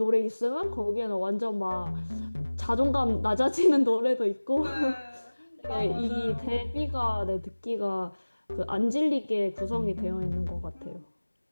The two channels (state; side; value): inverted; both; correlation -1.00